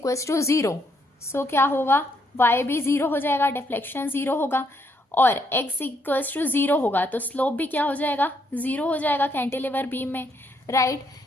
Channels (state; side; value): normal; both; correlation 0.74